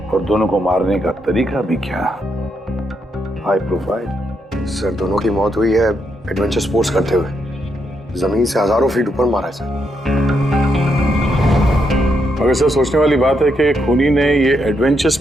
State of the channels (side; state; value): both; normal; correlation 0.80